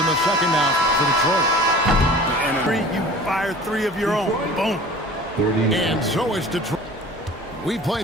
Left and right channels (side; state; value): both; normal; correlation 0.43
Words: the second now for Detroit. You fire 3 of your own. Boom. And so it's Detroit. We